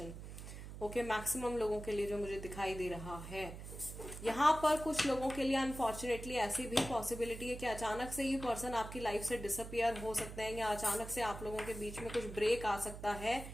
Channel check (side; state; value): right; noise; hum, 10 dB below the sound